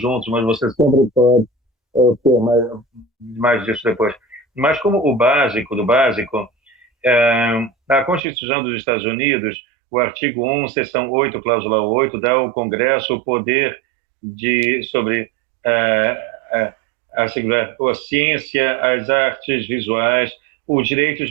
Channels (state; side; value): drops out; left; at 8.2 s